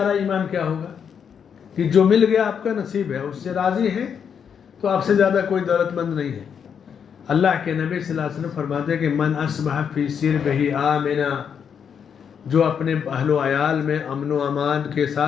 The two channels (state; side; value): quieter; right; 7.4 dB